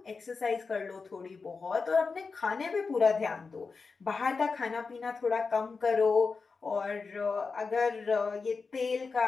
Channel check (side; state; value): right; quieter; 4.6 dB